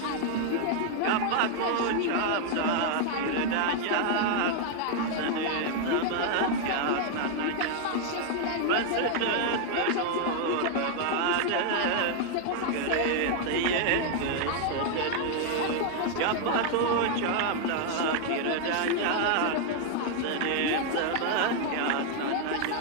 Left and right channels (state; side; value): different; both; correlation 0.00